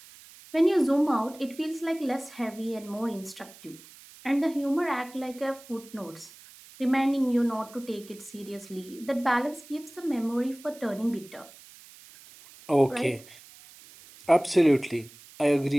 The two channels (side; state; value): right; noise; hiss, 21 dB below the sound